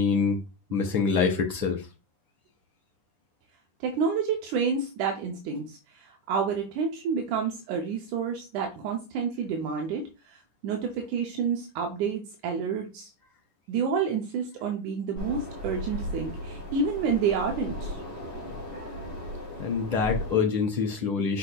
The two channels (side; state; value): left; late; 10 ms